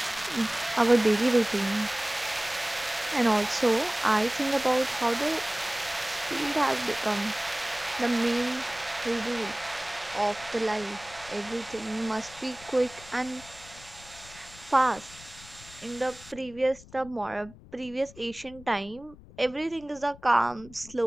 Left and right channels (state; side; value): noise; left; rumble, 20 dB below the sound